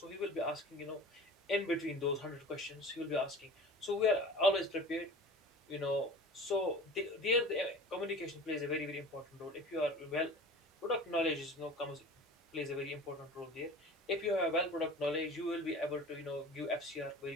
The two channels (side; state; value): both; normal; correlation 0.39